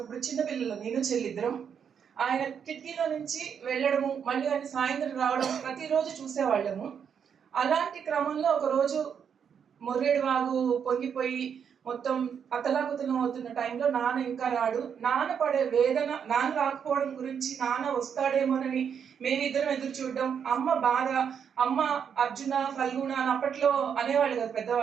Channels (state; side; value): quieter; left; 7.5 dB